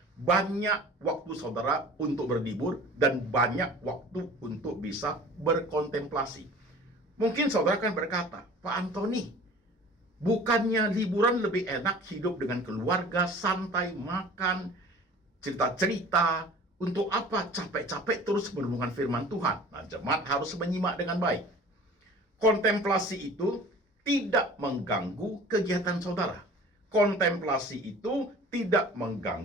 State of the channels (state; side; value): normal; both; correlation 0.44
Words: Banyak waktu saudara untuk berlibur dan banyak waktu untuk bisa berkontemplasi. Mungkin saudara akan berkata, Pak Anthony, bukannya liburan lebih enak hidup dengan keluarga, santai, makan, cerita-cerita, untuk apa capek-capek terus merenungkan firman Tuhan? Nah, jemaat harus menyimak dengan baik. Kontemplasi itu tidak mengganggu kegiatan saudara. Kontemplasi itu tidak